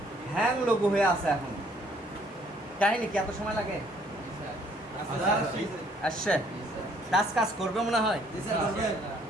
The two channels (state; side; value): normal; both; correlation 0.63